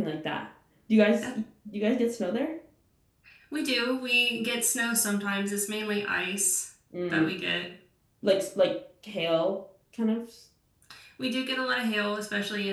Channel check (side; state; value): both; identical; correlation 1.00